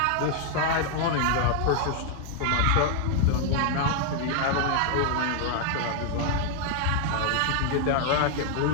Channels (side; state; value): both; different; correlation 0.00